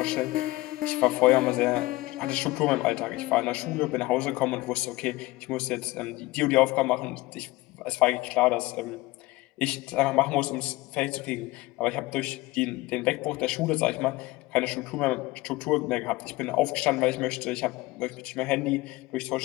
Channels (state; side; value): quieter; right; 19.9 dB